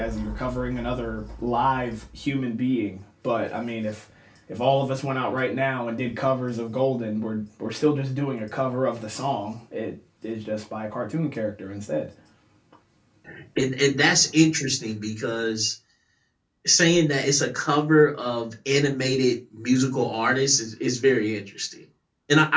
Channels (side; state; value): both; identical; correlation 1.00